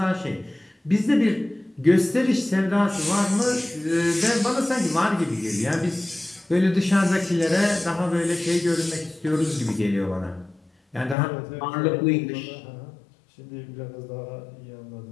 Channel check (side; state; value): right; drops out; at 11.2 s